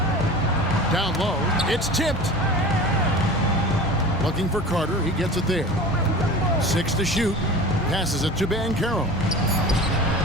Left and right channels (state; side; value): normal; both; correlation 0.36